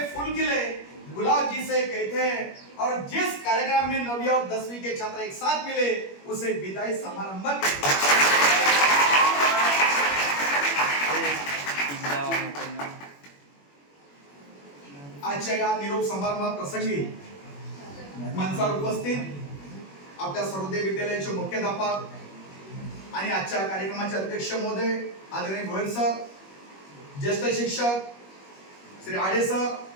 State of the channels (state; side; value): late; right; 21 ms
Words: फूल खिले गुलाब जिसे कहते हैं, और जिस कार्यक्रम में 9वीं और 10वीं के छात्र एक साथ मिले उसे विदाई समारंभ कहते हैं. आजच्या या निरोप समारंभ प्रसंगी मंचावर उपस्थित आपल्या सर्वोदय विद्यालयाचे मुख्याध्यापक आणि आजच्या कार्यक्रमाचे अध्यक्ष महोदय आदरणीय गोयल सर, ज्येष्ठ शिक्षक श्री आडे सर,